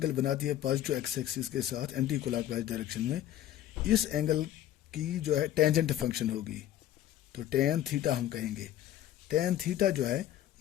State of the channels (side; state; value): right; quieter; 12.5 dB